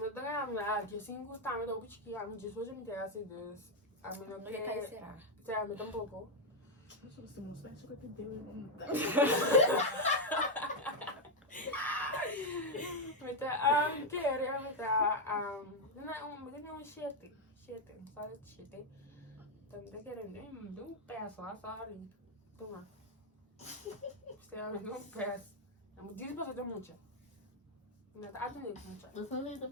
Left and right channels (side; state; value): both; normal; correlation 0.02